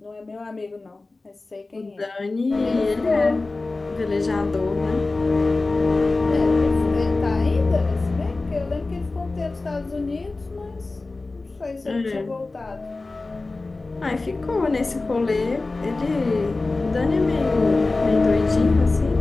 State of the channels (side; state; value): right; quieter; 3.4 dB